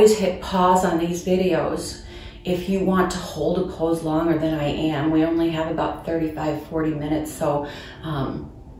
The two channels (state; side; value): identical; both; correlation 1.00